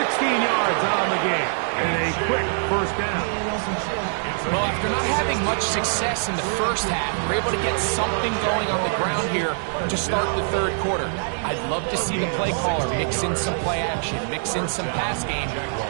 yards on the game. And a quick 1st down. Well, after not having much success in the first half, we're able to get something going on the ground here to start the 3rd quarter. I'd love to see the play caller mix in some play action, mix in some pass game.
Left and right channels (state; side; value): silent; left; digital silence